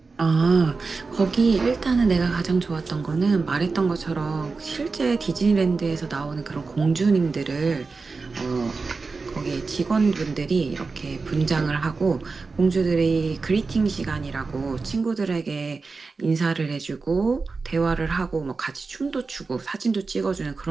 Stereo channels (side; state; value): left; quieter; 4.2 dB